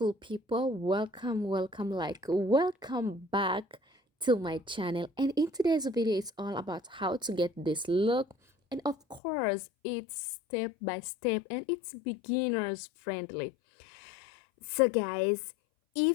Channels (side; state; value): right; drops out; at 9.2 s